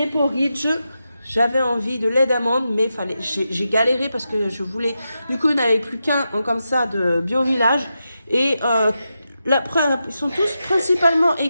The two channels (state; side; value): inverted; both; correlation -0.88